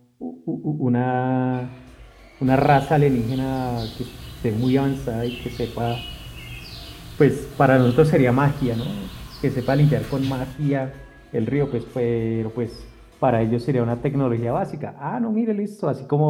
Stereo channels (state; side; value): identical; both; correlation 1.00